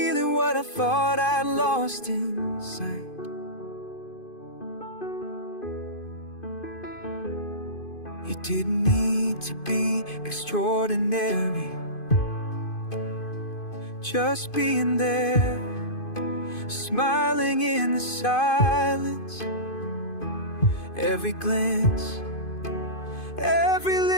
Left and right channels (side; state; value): right; late; 2.5 ms